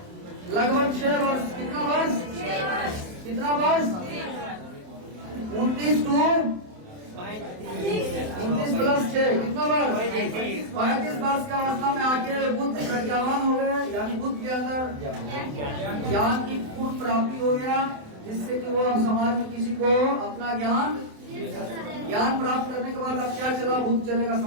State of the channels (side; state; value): left; late; 27 ms